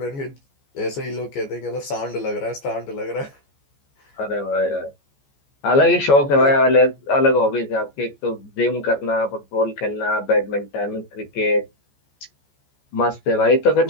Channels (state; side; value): late; right; 14 ms